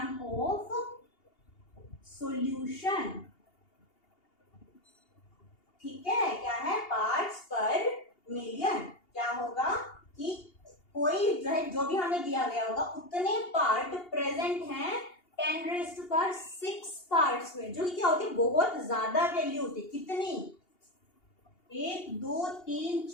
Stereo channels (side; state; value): right; late; 2.8 ms